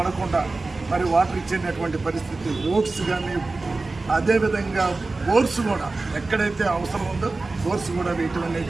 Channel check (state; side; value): quieter; left; 3.5 dB